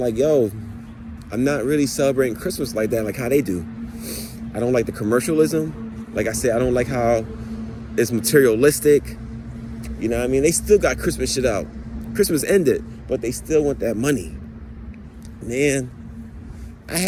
like, yo, I'm not really celebrating Christmas like that, like how they do. I don't like the commercialism. Like I said, I don't like how it's materialistic. You know what I mean? They still got Christmas shit out. Christmas ended, but they still want that money. Man, I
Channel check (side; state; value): both; identical; correlation 1.00